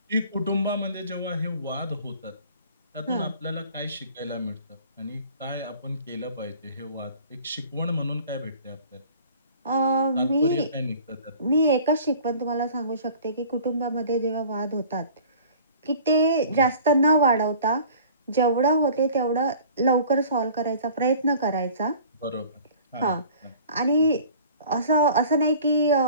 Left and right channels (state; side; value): inverted; both; correlation -0.47